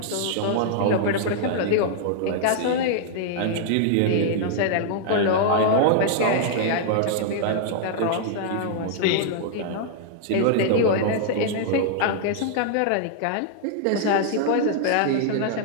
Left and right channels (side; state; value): both; different; correlation -0.01